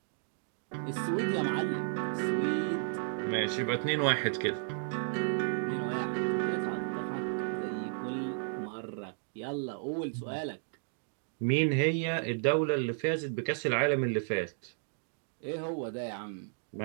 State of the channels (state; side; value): silent; left; digital silence